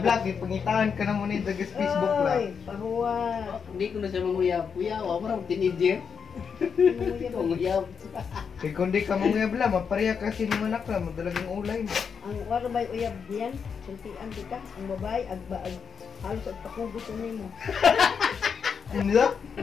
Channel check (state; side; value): quieter; right; 6.5 dB